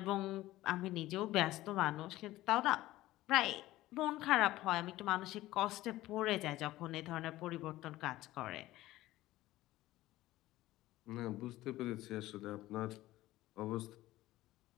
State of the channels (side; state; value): right; quieter; 16.4 dB